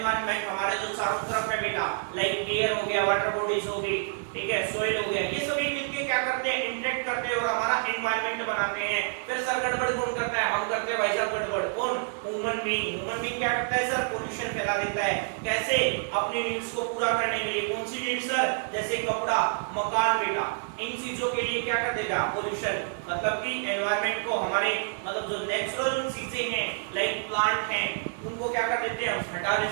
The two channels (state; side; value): silent; left; 59 dB below the other